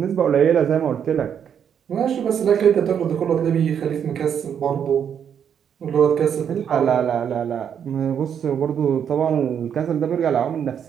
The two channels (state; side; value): quieter; left; 8.3 dB